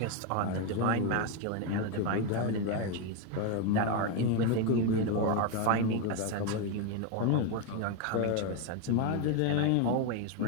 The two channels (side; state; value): both; different; correlation 0.02